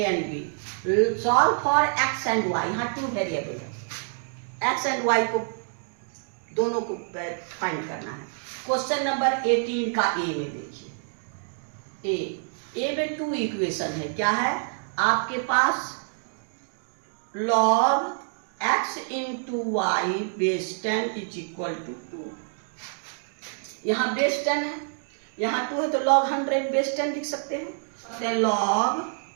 and B. Solve for X and Y. यहाँ 2 variable है, एक्स एंड वाई को दोनों को फाइंड करना है। क्वेश्चन नंबर 18 का ए में देखिए, ए में 2 इक्वेशन है। क्या है आपके पास? log x into Y base 10 is equal to 2। यहाँ बेस 10 है, यहाँ 2 है तो log 100 बेस 10 लिख सकते हैं। तो log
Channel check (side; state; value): left; silent; digital silence